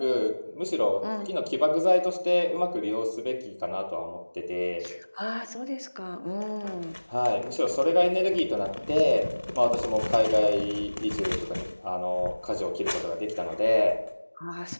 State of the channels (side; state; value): both; inverted; correlation -1.00